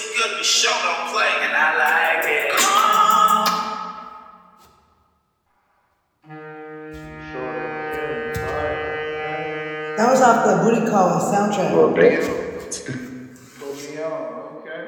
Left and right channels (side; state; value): both; identical; correlation 1.00